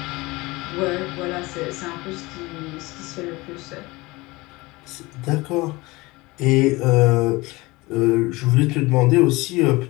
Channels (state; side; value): quieter; right; 22.3 dB